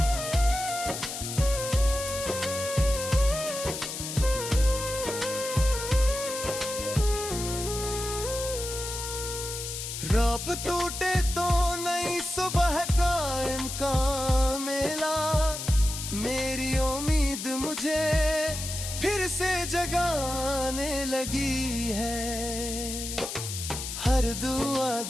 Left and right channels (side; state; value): left; noise; hiss, 6 dB below the sound